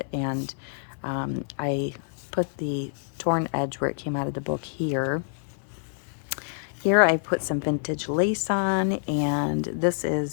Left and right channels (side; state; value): right; silent; 58 dB below the other